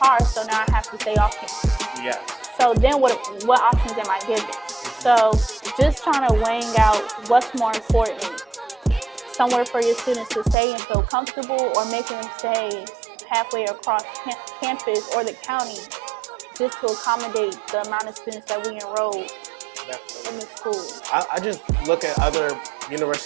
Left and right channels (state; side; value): drops out; left; at 10.6 s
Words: so now I have to stay off campus. Yes. So then what options am I given? So just trying to weighing out what's more important. Somewhere for your students to stay and feel comfortable, or making them stay halfway across campus or the county, just to accommodate the amount of students that we enroll in the school. I just look at other